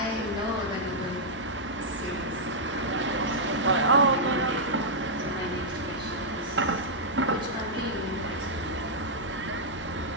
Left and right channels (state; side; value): normal; both; correlation -0.08